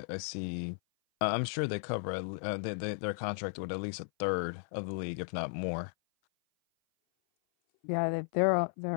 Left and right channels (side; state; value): right; silent; 55 dB below the other